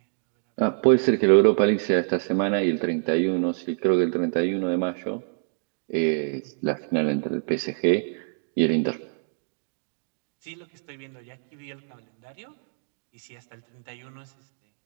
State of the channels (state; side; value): silent; left; digital silence